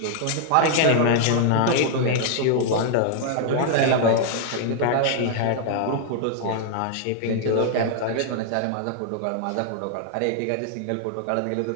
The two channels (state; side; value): different; both; correlation 0.00